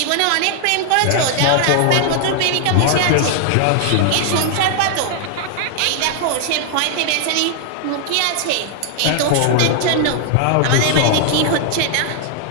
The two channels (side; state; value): both; different; correlation 0.00